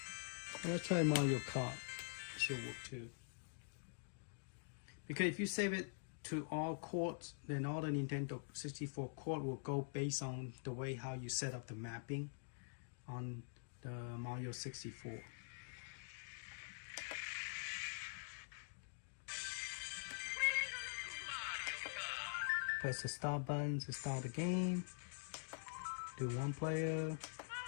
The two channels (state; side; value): silent; right; digital silence